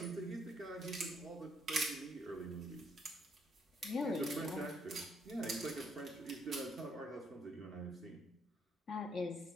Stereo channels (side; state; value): both; normal; correlation 0.71